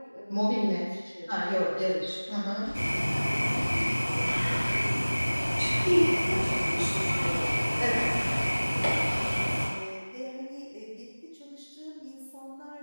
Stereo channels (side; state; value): both; inverted; correlation -1.00